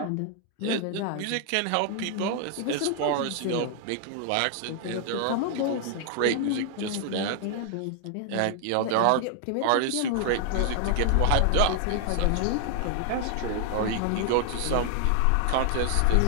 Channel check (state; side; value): different; both; correlation 0.00